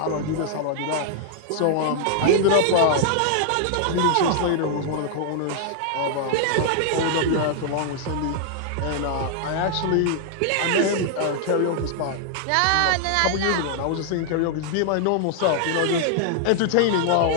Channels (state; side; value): different; both; correlation 0.00